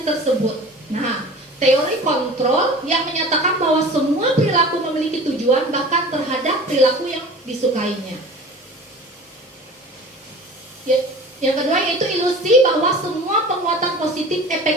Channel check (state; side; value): normal; both; correlation 0.40